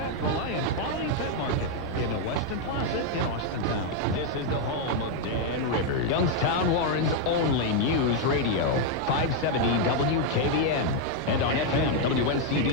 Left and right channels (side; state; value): left; noise; rumble, 22 dB below the sound